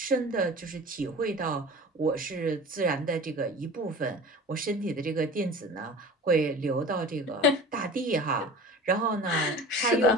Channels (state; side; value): normal; both; correlation 0.38